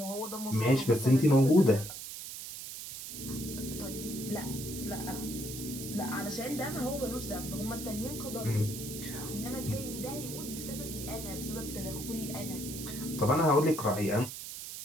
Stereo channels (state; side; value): noise; right; hiss, 9 dB below the sound